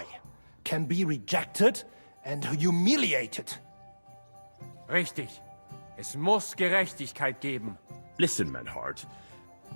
can be rejected and humiliated. Richtig. Es muss Gerechtigkeit geben. Listen, Menhard.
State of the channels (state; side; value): inverted; both; correlation -1.00